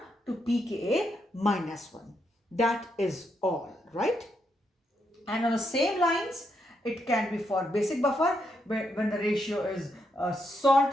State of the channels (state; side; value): normal; both; correlation 0.80